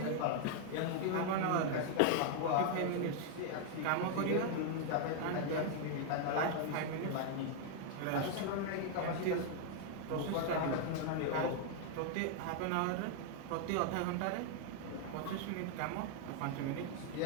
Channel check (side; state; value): both; different; correlation 0.00